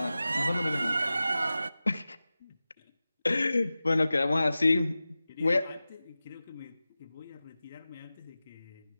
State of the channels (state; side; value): inverted; both; correlation -0.95